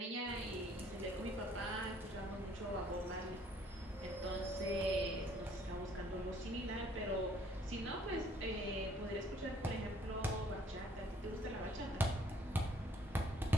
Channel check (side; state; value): both; normal; correlation 0.62